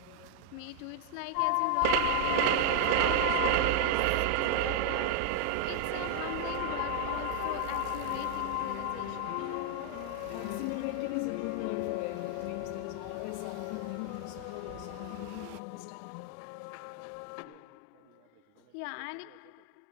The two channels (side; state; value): both; different; correlation 0.00